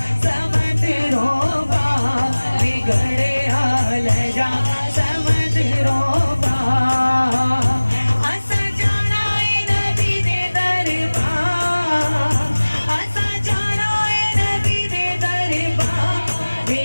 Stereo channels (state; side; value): inverted; both; correlation -1.00